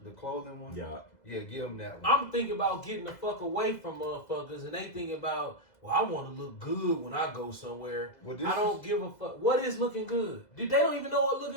clothing one? Yeah. Yeah, give them that one. I'm thinking about getting the fuck away from motherfuckers, and they thinking about, well, I want to look good when I go somewhere. Well, I don't give a fuck. What is looking good? They don't even know what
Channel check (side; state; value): right; late; 2.0 ms